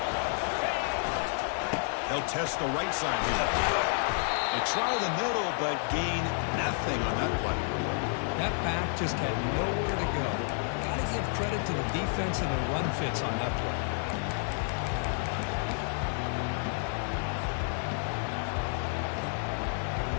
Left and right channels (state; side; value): silent; right; 57 dB below the other